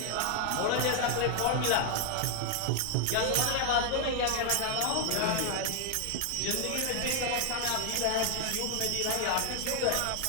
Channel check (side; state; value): both; different; correlation 0.00